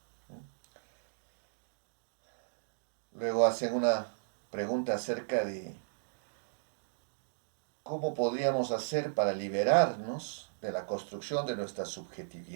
Luego hacen una pregunta acerca de cómo podríamos hacer para liberarnos de la construcción de nuestra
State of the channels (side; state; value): left; silent; digital silence